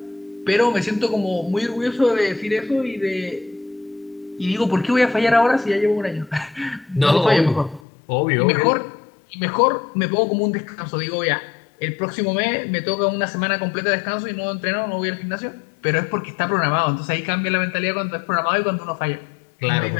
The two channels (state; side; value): drops out; right; at 7.8 s